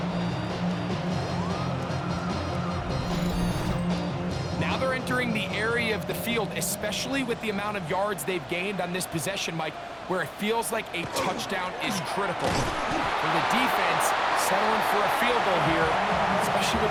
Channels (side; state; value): both; identical; correlation 1.00